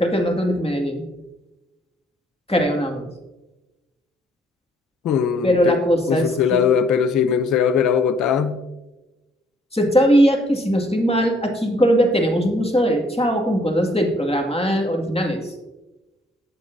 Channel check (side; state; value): both; normal; correlation 0.64